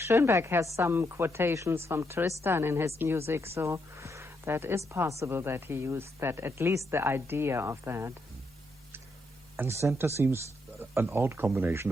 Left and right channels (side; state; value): both; normal; correlation 0.79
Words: has some quotations from Tristan in his music, so that is possible that he used that, at least the idea of that. And Senta seems an odd combination